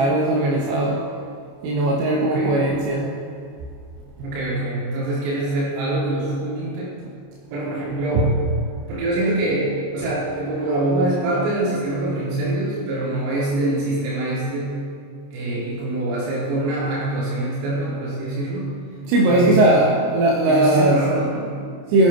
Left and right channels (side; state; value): left; late; 28 ms